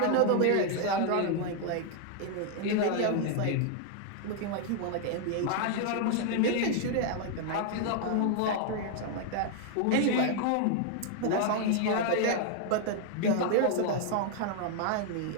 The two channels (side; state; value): both; different; correlation 0.00